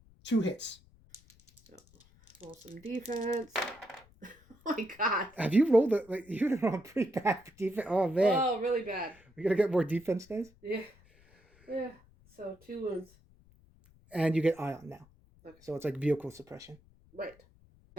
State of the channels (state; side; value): noise; left; rumble, 28 dB below the sound